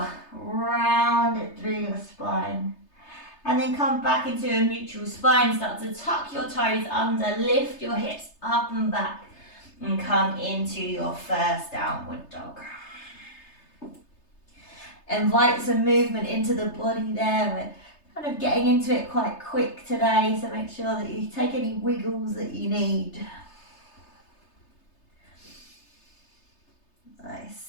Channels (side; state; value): right; late; 3.3 ms